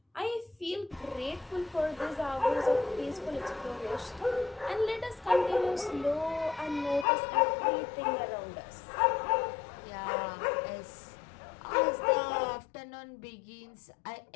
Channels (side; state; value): right; drops out; at 7.1 s